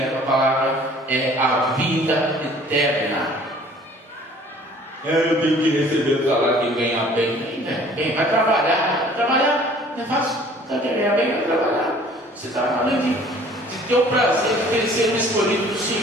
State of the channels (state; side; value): normal; both; correlation 0.52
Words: a palavra é a vida eterna. Eu tenho que receber o salário de ganhar bem. Vai trabalhar. Trabalhar não é fácil. Você quer ganhar bem? Vai trabalhar. Você está falando de ter o prazer de crescer no escolhido do